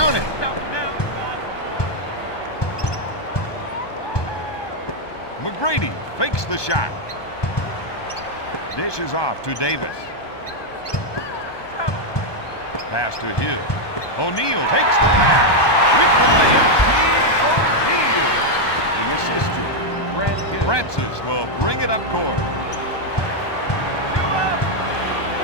it. McGrady fakes the shot. Dishes off to Davis. Pass to Hill. O'Neal takes the pass with the layup. The assist to Hill. Francis will bring it up court.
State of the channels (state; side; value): late; right; 1.2 ms